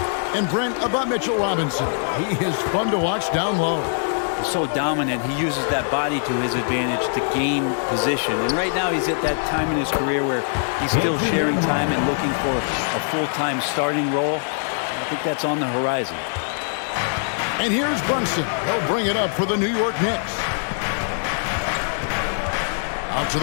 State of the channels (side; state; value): right; silent; 60 dB below the other